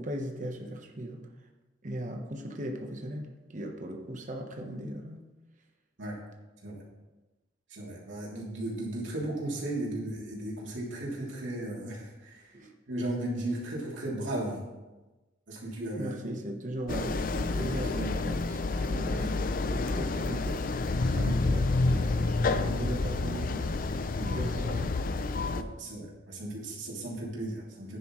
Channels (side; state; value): both; normal; correlation 0.68